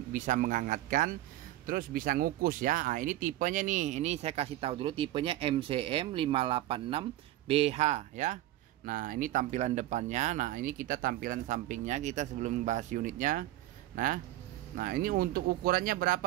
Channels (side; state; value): left; quieter; 15.2 dB